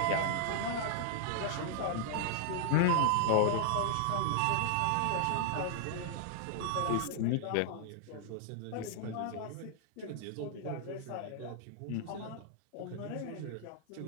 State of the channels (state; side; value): different; both; correlation -0.01